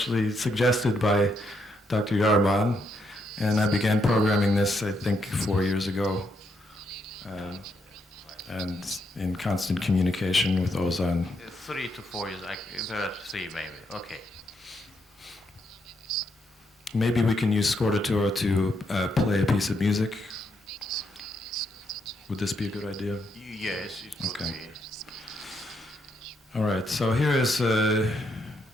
suggested by Dr. Yarman, and I began programming this, I think, 4 years ago, and in constant communication with Ozan. 3 to 4 years, perhaps 3 maybe, okay. Maybe we can use Scordatura to play a piece of music. Would this be a good idea? Yes, it could Okay. be. All right, so here is a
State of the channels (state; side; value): normal; both; correlation 0.77